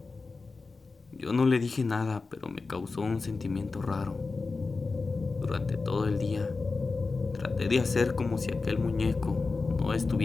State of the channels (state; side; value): quieter; right; 4.0 dB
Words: Yo no le dije nada, pero me causó un sentimiento raro. Durante todo el día traté de hacer como si aquel muñeco no